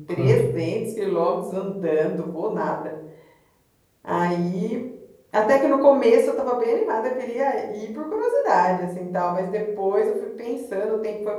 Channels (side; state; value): both; identical; correlation 1.00